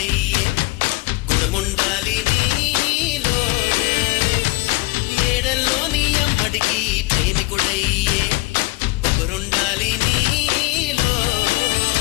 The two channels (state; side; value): quieter; right; 21.7 dB